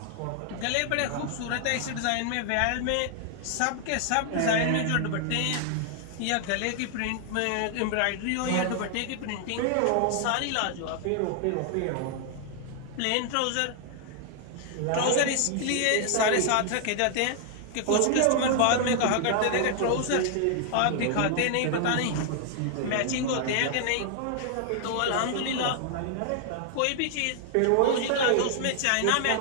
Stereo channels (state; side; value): different; both; correlation 0.00